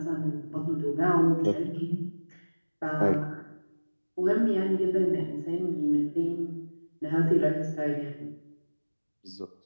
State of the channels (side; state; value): both; inverted; correlation -1.00